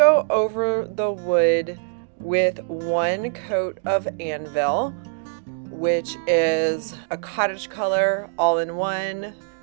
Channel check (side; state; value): left; silent; digital silence